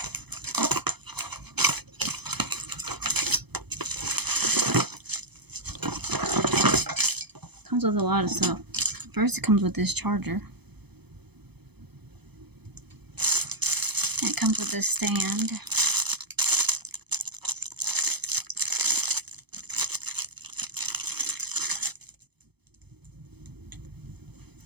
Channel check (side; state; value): left; late; 0.98 ms